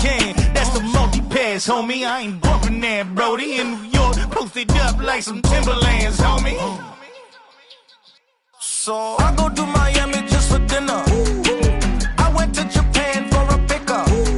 can. That's the multi-pass, homie. I ain't bumping that, Brody. In New York, posted up like some Timberlands, homie. So I go to Miami just for dinner. I went to Japan for a pickup.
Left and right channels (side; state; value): both; identical; correlation 1.00